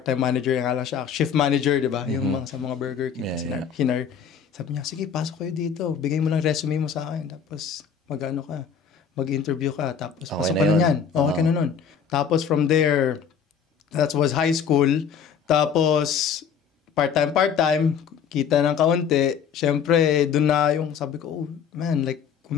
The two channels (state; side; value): quieter; right; 7.1 dB